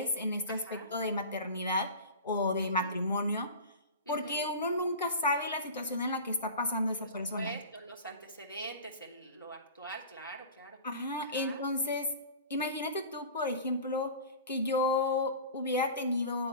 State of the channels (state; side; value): inverted; both; correlation -0.35